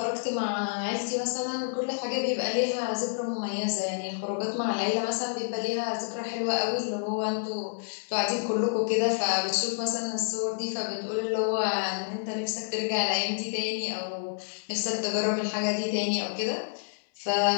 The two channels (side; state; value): right; silent; digital silence